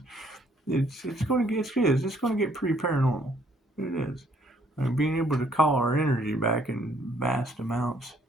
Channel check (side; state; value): both; normal; correlation 0.65